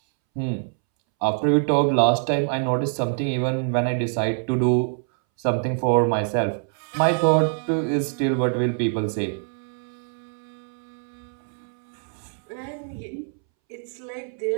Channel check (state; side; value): silent; left; 62 dB below the other